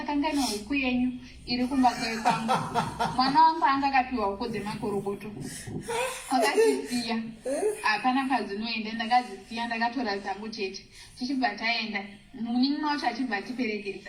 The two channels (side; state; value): both; identical; correlation 1.00